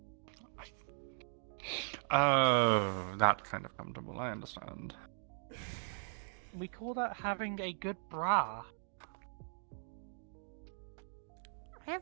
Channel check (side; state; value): left; silent; digital silence